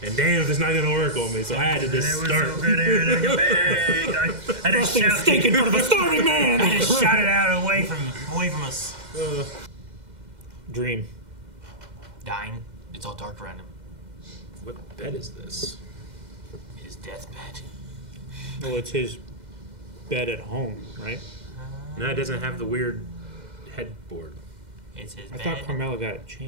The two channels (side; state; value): left; late; 2.1 ms